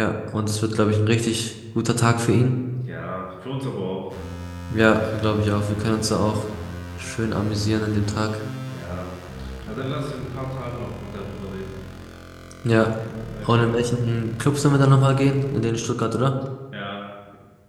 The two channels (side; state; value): both; identical; correlation 1.00